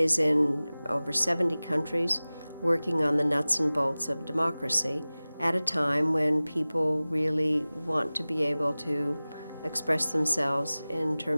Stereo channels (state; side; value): inverted; both; correlation -0.98